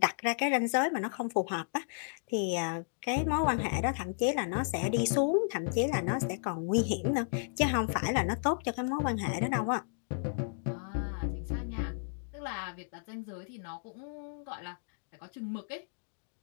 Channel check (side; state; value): right; silent; digital silence